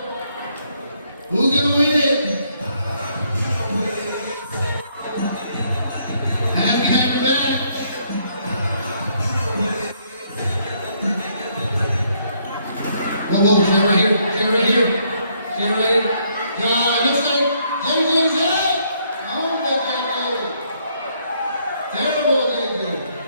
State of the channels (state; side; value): inverted; both; correlation -0.70